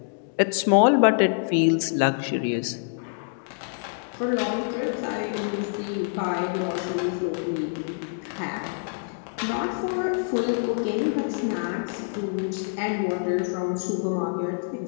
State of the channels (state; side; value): silent; right; digital silence